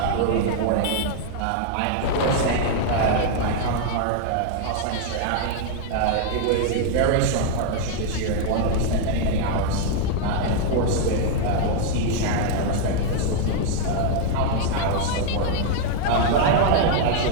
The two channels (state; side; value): different; both; correlation 0.00